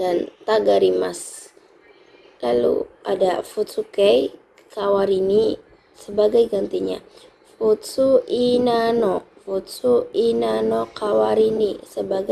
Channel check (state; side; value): identical; both; correlation 1.00